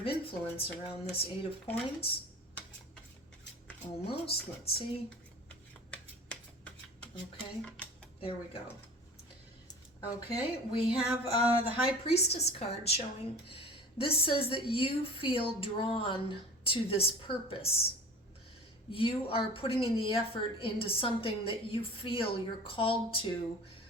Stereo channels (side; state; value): both; normal; correlation 0.41